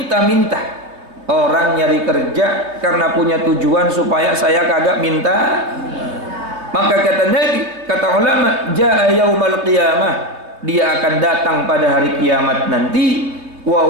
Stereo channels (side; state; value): left; late; 3.1 ms